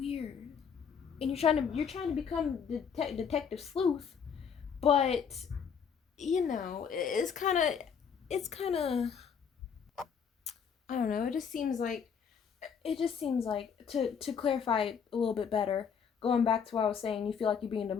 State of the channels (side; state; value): right; quieter; 6.9 dB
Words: and you're trying to become detective sleuth, but it's kind of I don't know. It just seems like to clarify a little bit better, going back to what I was saying, you feel like you're being